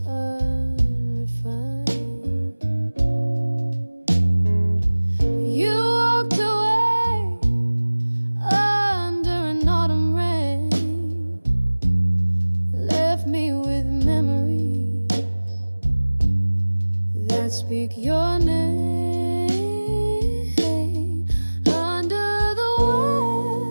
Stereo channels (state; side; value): inverted; both; correlation -1.00